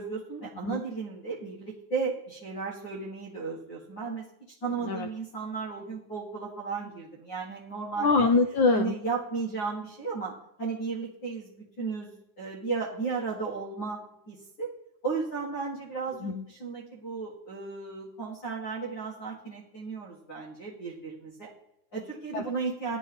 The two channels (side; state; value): right; late; 9.6 ms